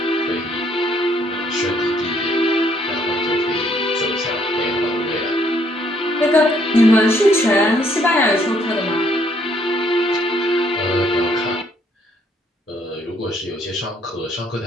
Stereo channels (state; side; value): normal; both; correlation 0.67